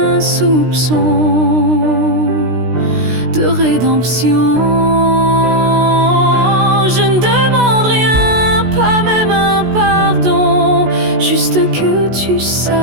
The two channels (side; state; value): left; late; 16 ms